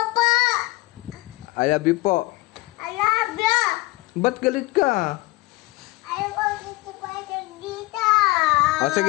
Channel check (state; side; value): quieter; right; 20.4 dB